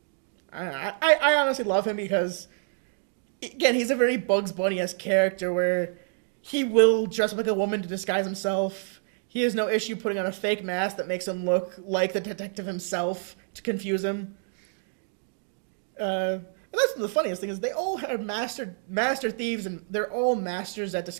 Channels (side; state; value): left; silent; 60 dB below the other